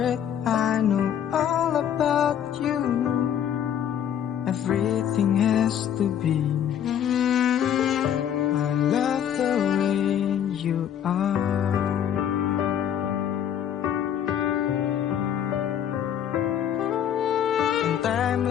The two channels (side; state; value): right; quieter; 9.5 dB